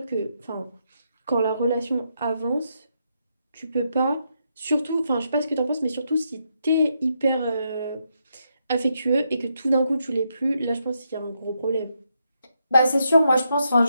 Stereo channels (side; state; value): both; inverted; correlation -0.80